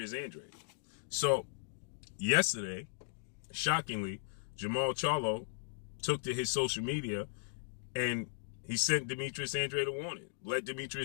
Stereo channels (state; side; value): silent; right; digital silence